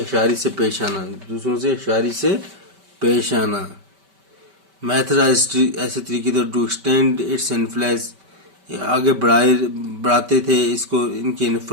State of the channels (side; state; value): left; late; 5.2 ms